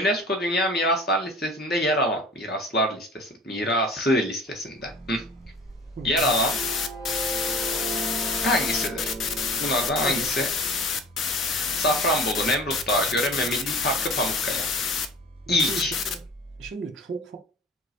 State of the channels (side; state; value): both; normal; correlation 0.42